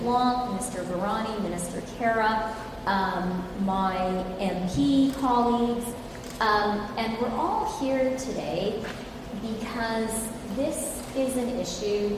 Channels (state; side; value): identical; both; correlation 1.00